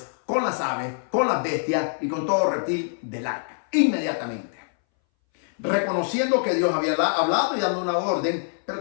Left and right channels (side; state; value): right; silent; 61 dB below the other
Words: con las aves, con las bestias y con todo reptil del arca. Inmediatamente. Reconociendo que Dios había hablado y dando una orden, pero